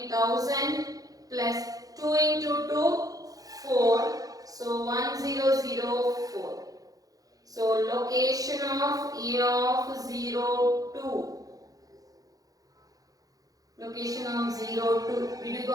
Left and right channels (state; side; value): late; left; 0.17 ms